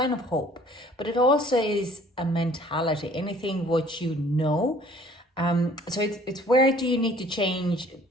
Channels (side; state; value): both; normal; correlation 0.54